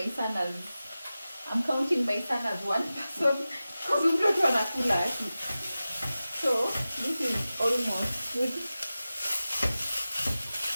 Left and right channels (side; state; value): both; inverted; correlation -0.95